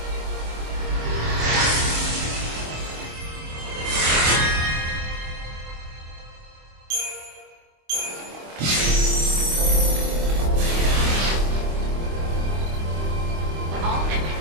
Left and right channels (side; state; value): left; late; 26 ms